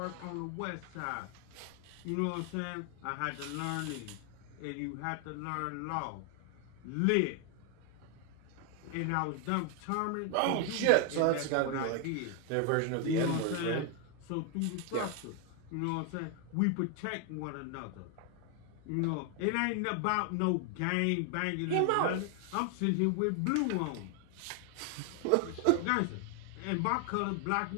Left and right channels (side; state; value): both; different; correlation 0.01